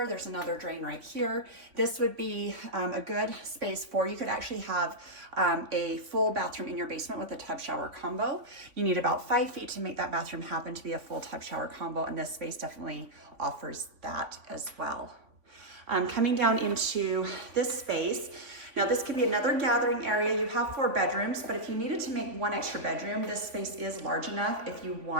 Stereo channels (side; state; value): left; late; 3.5 ms